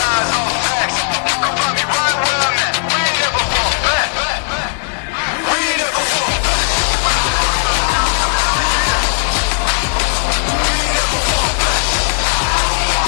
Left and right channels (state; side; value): silent; right; digital silence